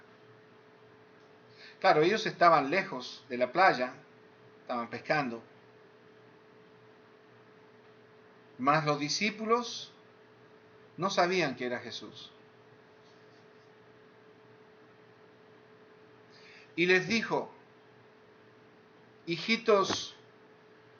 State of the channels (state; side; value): identical; both; correlation 1.00